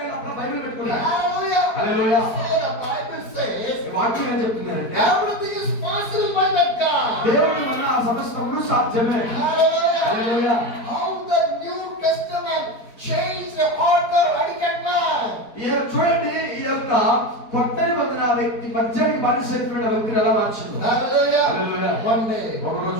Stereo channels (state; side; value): late; right; 4.4 ms